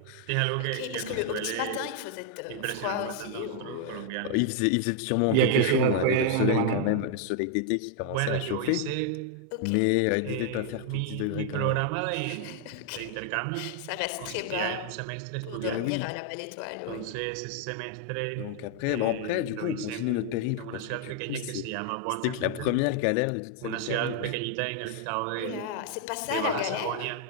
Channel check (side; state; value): both; different; correlation 0.00